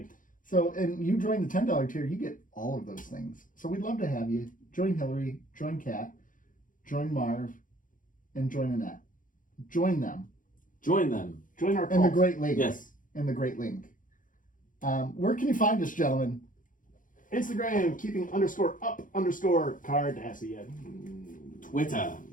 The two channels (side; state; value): right; late; 0.39 ms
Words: So, and you join the $10 tier, you get all of those things. So we'd love to have you. Join Hillary, join Kat, join Marv, and join Annette. Join them. Join our cult. And the Great Link. Yes. And the Great Link. Where can you find us, gentlemen? Instagram, keeping_up_Cardassian. Twitter,